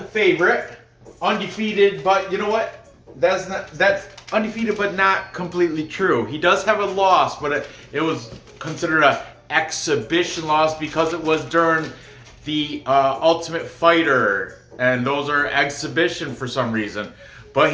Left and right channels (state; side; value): identical; both; correlation 1.00